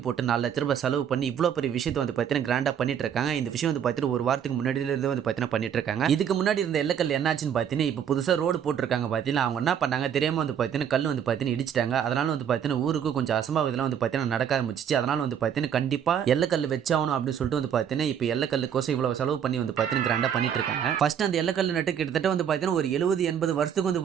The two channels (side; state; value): left; quieter; 8.6 dB